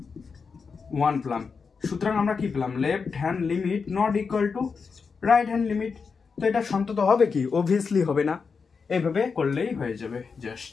1 পেলাম। সুতরাং আমরা কি পেলাম, left hand limit not equal to right hand limit. তো এটা সন্তত হবে কি, অবভিয়াসলি হবে না। এইভাবে করলেই হয়ে যাবে,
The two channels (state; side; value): quieter; right; 5.3 dB